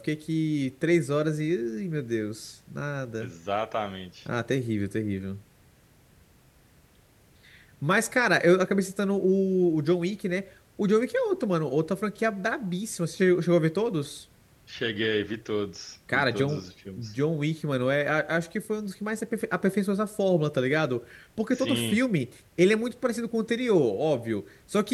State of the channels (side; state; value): both; identical; correlation 1.00